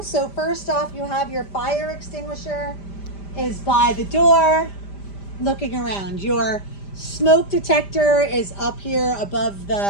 So first off, you have your fire extinguisher is by the door, looking around. Your smoke detector is up here above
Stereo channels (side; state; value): right; late; 5.0 ms